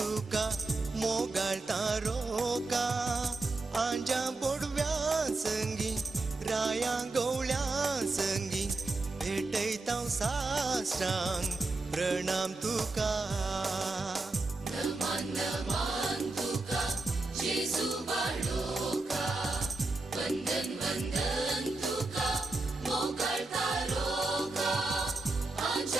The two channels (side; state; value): left; quieter; 3.3 dB